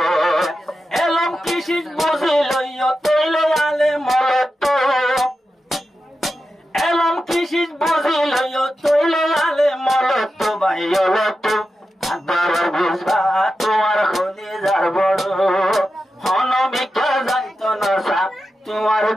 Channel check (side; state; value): both; normal; correlation 0.91